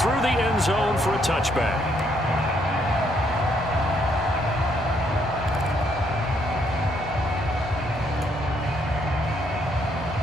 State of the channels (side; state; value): both; normal; correlation 0.71